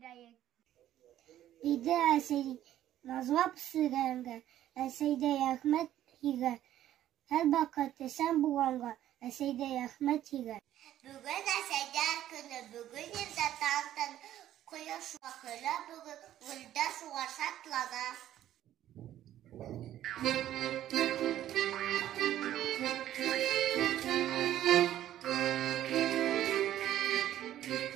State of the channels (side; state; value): left; quieter; 12.4 dB